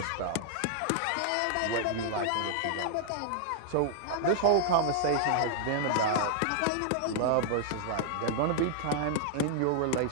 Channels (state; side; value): different; both; correlation -0.01